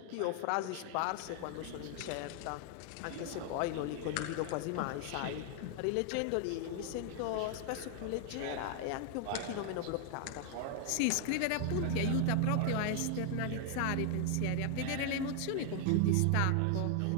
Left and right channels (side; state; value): both; different; correlation 0.00